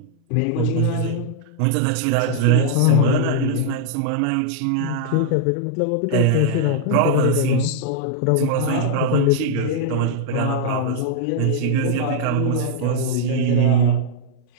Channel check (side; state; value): both; different; correlation -0.01